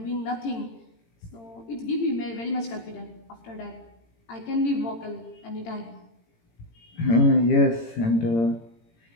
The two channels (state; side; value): late; right; 18 ms